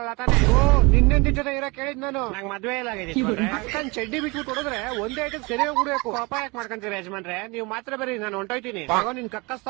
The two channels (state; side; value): quieter; left; 26.6 dB